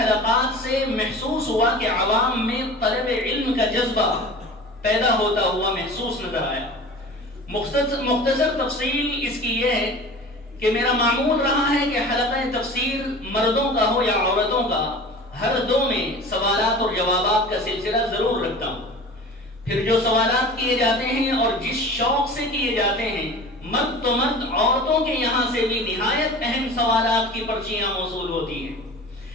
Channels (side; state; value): both; normal; correlation 0.38